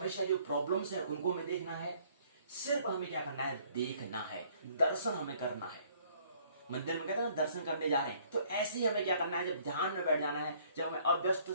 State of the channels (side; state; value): both; inverted; correlation -0.60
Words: जो प्रॉब्लम्स है उनको हमें देखना है। सिर्फ हमें क्या करना है, देखना है, दर्शन हमें करना है। मंदिर में कहते हैं ना, दर्शन करने जा रहे हैं, तो ऐसे ही हमें क्या करना है, जब ध्यान में बैठ जाना है, जब हमें अव्यस्त